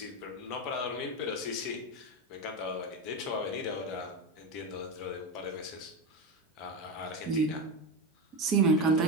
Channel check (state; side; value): normal; both; correlation 0.16